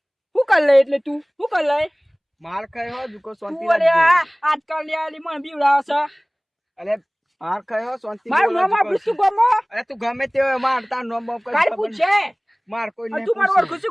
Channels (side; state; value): both; identical; correlation 1.00